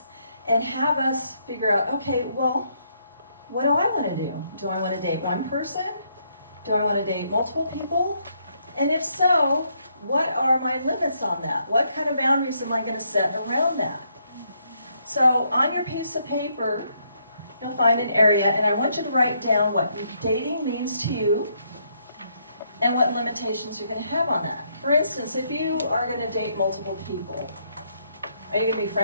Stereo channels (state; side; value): inverted; both; correlation -0.74